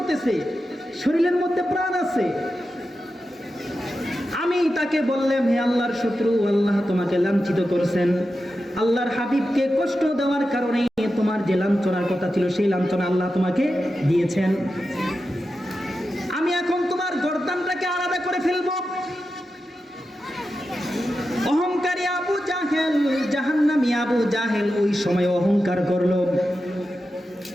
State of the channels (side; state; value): both; normal; correlation 0.90